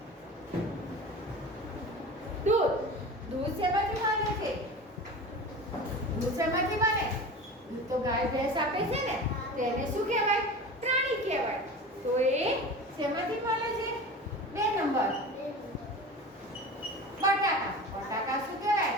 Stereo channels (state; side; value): normal; both; correlation 0.33